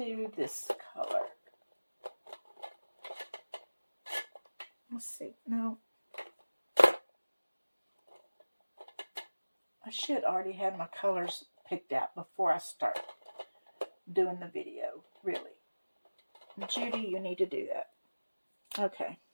this color. Let's see. No. I should already have my colors picked out before I start doing the video, really. Judy, you need to do that. Okay.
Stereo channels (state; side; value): inverted; both; correlation -1.00